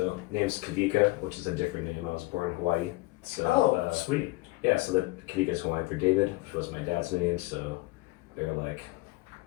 name's Kawika, which is a different name. I was born in Hawaii. So, Sweet. Yeah, so that Kawika is Hawaiian for David, which was my dad's name. So they were like,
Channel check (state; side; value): quieter; right; 21.5 dB